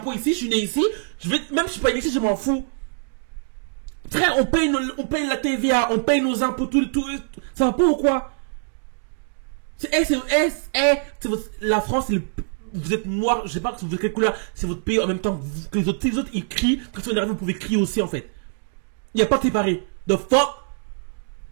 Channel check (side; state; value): left; silent; digital silence